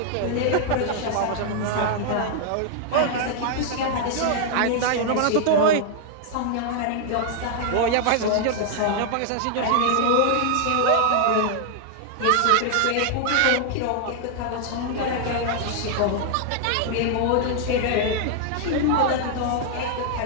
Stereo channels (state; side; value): different; both; correlation 0.00